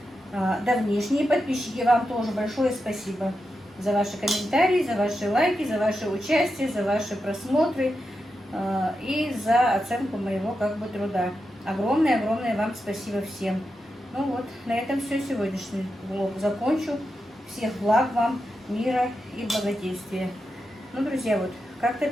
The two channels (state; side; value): normal; both; correlation 0.88